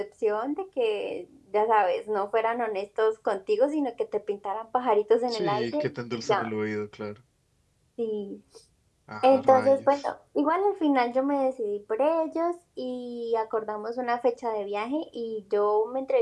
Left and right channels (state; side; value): identical; both; correlation 1.00